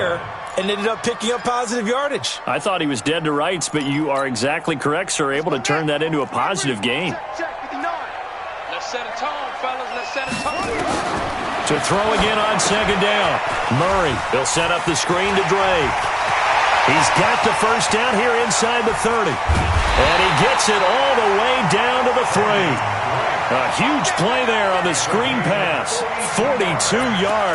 and ended up picking up positive yardage. I thought he was dead to rights, but you are exactly correct, sir. Able to turn that into a positive gain. Let's set a tone, fellas. Let's set a tone. To throw again on second down. Murray, he'll set up the screen to Drake. He's got the first down here inside the 30. And he gets it all the way down to the 3. A huge play there on the screen pass. 42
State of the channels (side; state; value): both; identical; correlation 1.00